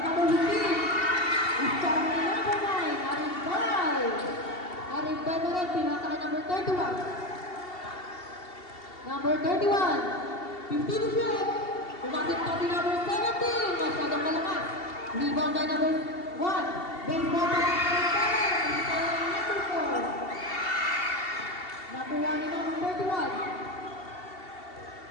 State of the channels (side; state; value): right; late; 2.7 ms